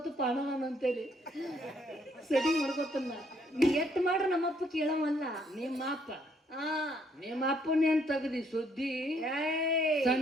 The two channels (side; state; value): both; normal; correlation 0.69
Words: ಪಾಣನ ಅಂತೇಳಿ ಸೆಟ್ಟಿಂಗ್ ಮಾಡ್ಕೋತನ್ನ ನೀ ಎಟ್ ಮಾಡ್ರ ನಮ್ಮಪ್ಪ ಕೇಳವಲ್ಲ ನಿಮ್ಮ ಅಪ್ಪನೇ ಅಂತ ತಗದಿ ಸುದ್ದಿ ಏಯ್